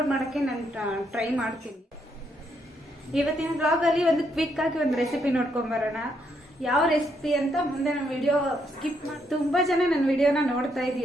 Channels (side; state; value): both; normal; correlation 0.75